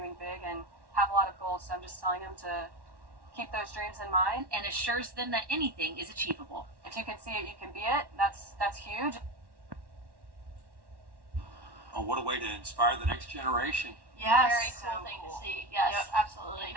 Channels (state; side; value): late; left; 1.1 ms